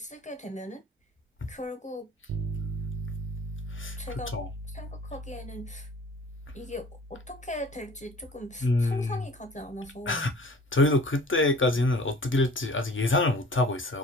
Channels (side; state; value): both; normal; correlation 0.47